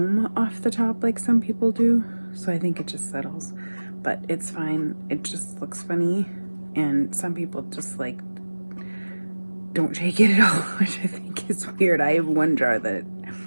off the top like some people do, so I think it just settles. But it's fine, it just looks funny, and some people just like don't shake it at all, which I think is weird. I have one jar that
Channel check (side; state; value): both; inverted; correlation -1.00